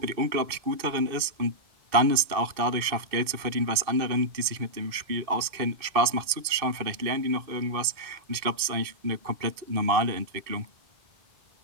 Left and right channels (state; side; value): late; left; 2.5 ms